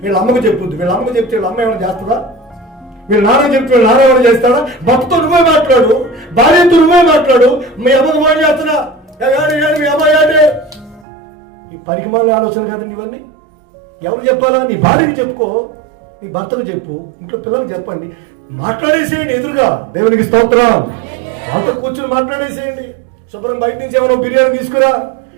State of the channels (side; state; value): left; drops out; at 11.1 s